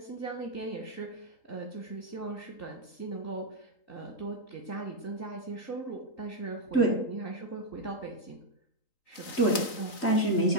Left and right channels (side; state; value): right; late; 4.0 ms